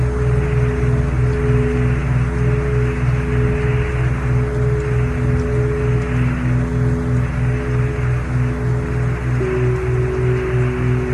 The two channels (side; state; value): both; identical; correlation 1.00